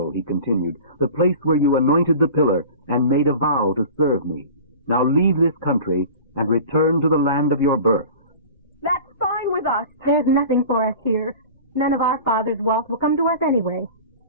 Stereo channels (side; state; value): both; inverted; correlation -0.38